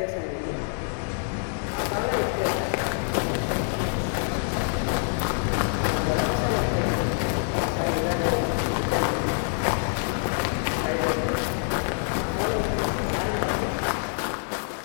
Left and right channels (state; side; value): silent; right; 61 dB below the other